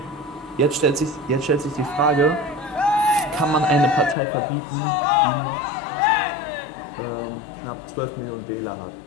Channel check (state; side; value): drops out; right; at 4.2 s